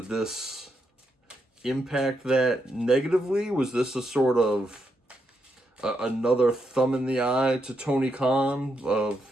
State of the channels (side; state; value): both; normal; correlation 0.81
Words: this impact that negatively? Was this a sort of another thumb in the eye to Tony Khan